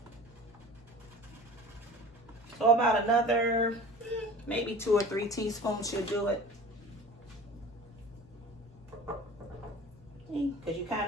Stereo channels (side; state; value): both; normal; correlation 0.40